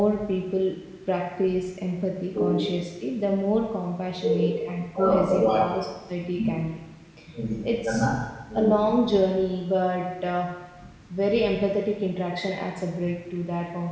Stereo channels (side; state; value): both; identical; correlation 1.00